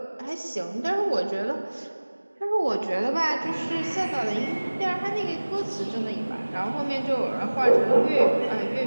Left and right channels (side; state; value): both; inverted; correlation -1.00